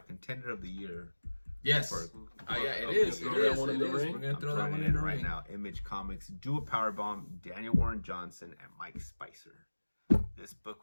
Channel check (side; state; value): both; inverted; correlation -1.00